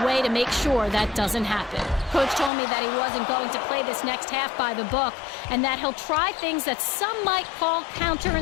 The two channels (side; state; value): right; drops out; at 2.5 s